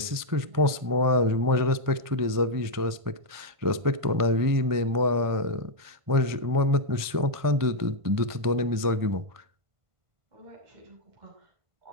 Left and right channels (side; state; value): left; late; 1.5 ms